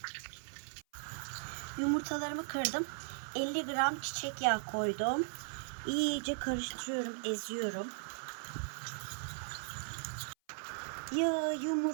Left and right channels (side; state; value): left; silent; 53 dB below the other